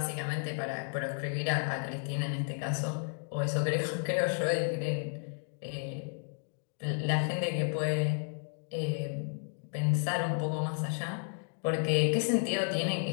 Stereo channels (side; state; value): right; silent; 55 dB below the other